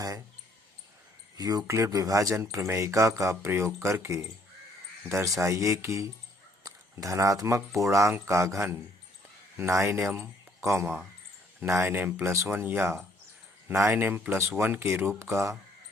यूक्लिड विभाजन प्रमेयिका का प्रयोग करके दर्शाइए कि धनात्मक पूर्णांक का घन 9m, 9m+1 या 9m+1 के रूप का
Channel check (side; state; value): both; normal; correlation 0.65